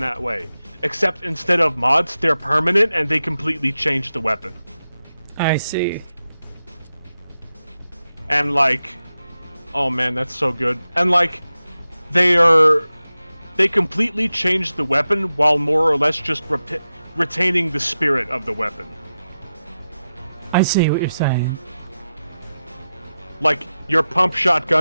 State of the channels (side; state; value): both; inverted; correlation -0.92